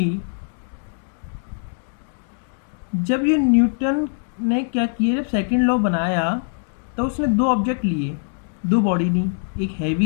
जब ये न्यूटन ने क्या किया, जब सेकंड लॉ बनाया तो उसने दो ऑब्जेक्ट लिए, दो बॉडी ली, एक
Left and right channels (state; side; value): silent; right; digital silence